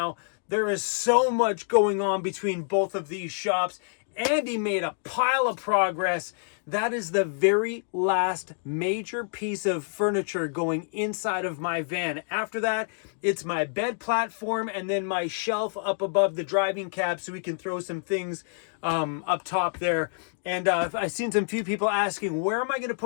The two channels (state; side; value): silent; right; digital silence